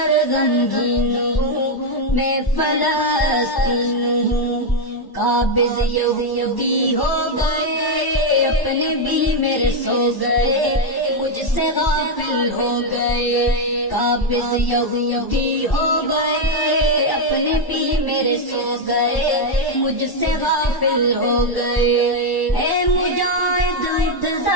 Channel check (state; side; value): late; right; 1.1 ms